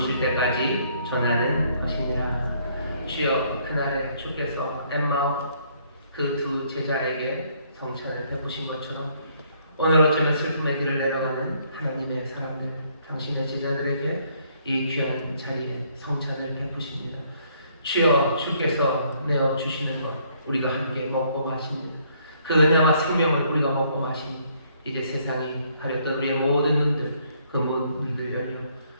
때까지 전하는 것이니라. 주여 그날에 주께서 엠마오 그 두 제자에게 성찬을 베푸신 것처럼 오늘 어쩌면 슬픔의 길을 내려가는 하나님의 사람들 당신의 제자들에게 이 귀한 자리에 성찬을 베푸십니다. 주여 주께서 내어주시는 것 우리가 함께 먹고 마십니다. 그 은혜와 생명을 우리가 먹고 마시니 이제 세상이 가렸던 우리의 모든 눈들 그 문들 열려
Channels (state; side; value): inverted; both; correlation -0.67